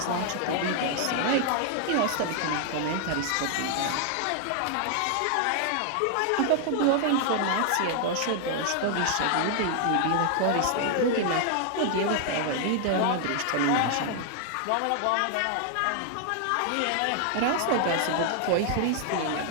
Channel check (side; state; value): both; different; correlation 0.00